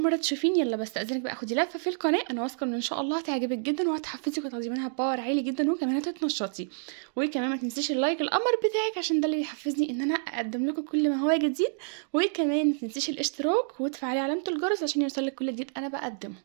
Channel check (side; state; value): left; silent; digital silence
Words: مره تشوفيني يلا بستأذنك بقى خدي لفه في القناه، انا واثقه ان شاء الله هتعجبك جدا وهتحفزك وتاخدي منها باور عالي جدا وكمان هتتنشطي. وكمان ما تنسيش اللايك القمر بتاعك عشان ده اللي بيحفزني ان انا اقدم لكم كل ما هو جديد. وكمان ما تنسيش الاشتراك وتفعلي علامه الجرس عشان يوصلك كل جديد انا بقدمه.